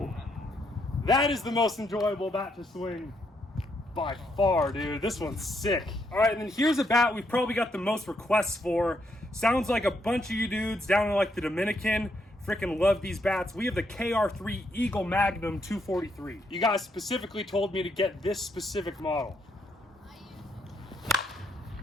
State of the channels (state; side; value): normal; both; correlation 0.76